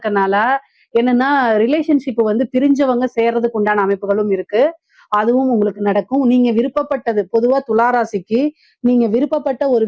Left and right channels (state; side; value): identical; both; correlation 1.00